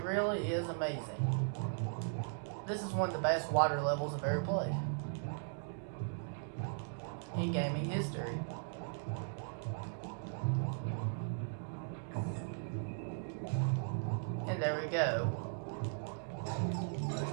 really is amazing. This is one of the best water levels I've ever played in gaming history. And there we go.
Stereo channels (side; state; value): left; silent; digital silence